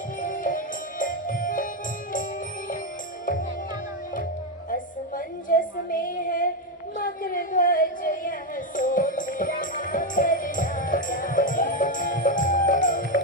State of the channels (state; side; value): normal; both; correlation 0.07